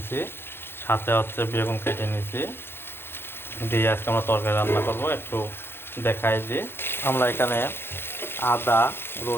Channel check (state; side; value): late; right; 0.11 ms